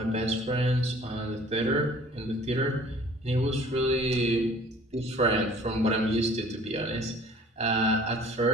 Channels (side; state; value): both; normal; correlation 0.51